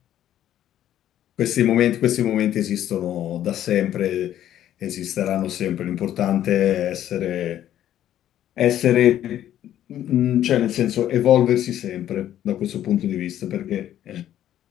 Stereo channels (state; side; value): quieter; right; 11.7 dB